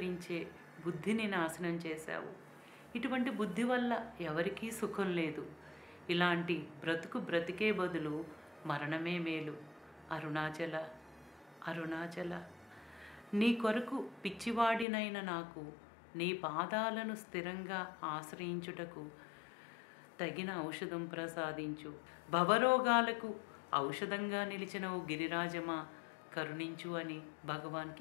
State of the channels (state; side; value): drops out; right; at 14.9 s